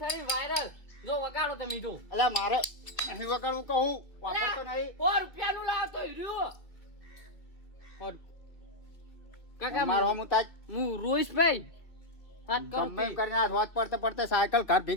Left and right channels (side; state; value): right; late; 2.0 ms